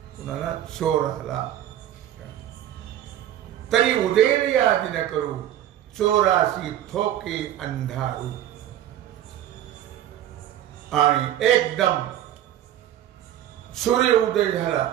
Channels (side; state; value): left; quieter; 11.8 dB